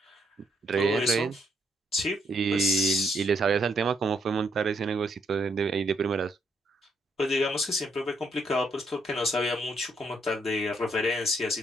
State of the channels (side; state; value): both; normal; correlation 0.73